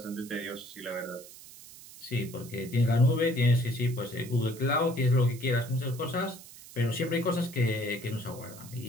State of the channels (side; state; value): right; noise; hiss, 17 dB below the sound